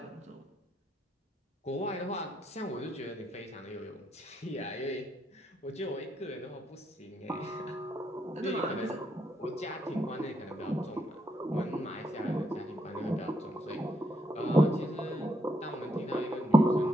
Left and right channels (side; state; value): both; normal; correlation 0.77